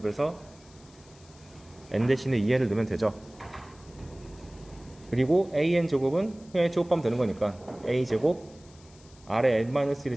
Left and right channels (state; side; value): noise; left; hiss, 26 dB below the sound